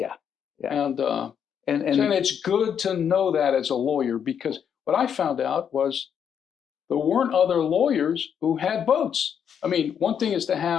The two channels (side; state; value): right; quieter; 8.0 dB